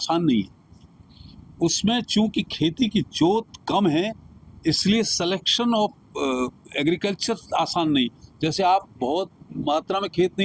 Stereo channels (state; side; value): identical; both; correlation 1.00